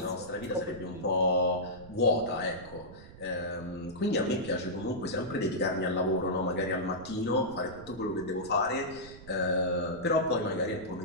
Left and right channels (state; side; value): noise; right; rumble, 17 dB below the sound